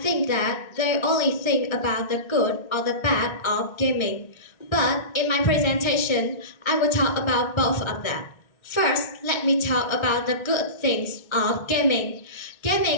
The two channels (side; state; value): right; late; 1.3 ms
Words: that they only think about the good or the bad of gaming. But in my presentation, I will talk about both of them. First, let me talk about the good things of gaming.